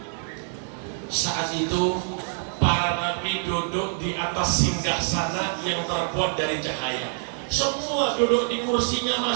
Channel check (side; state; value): left; silent; 61 dB below the other